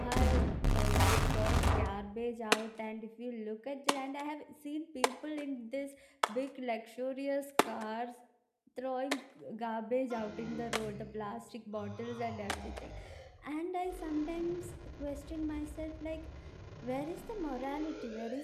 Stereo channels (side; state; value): both; identical; correlation 1.00